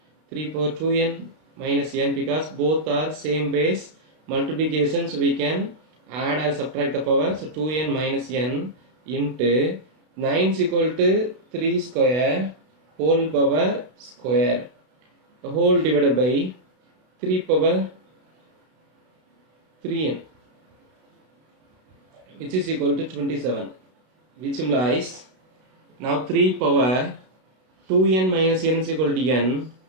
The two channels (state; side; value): late; left; 32 ms